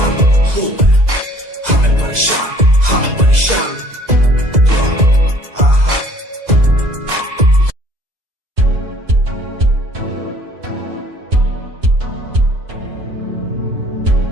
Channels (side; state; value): left; late; 2.0 ms